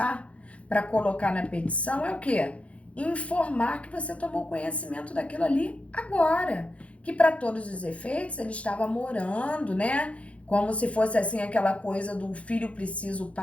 para colocar na petição é o quê? Informar que você tomou conhecimento daquilo ali agora. Que para todos os efeitos ele estava morando, né? Como se fosse assim aquela coisa do filho precisa, o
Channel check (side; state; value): right; late; 0.063 ms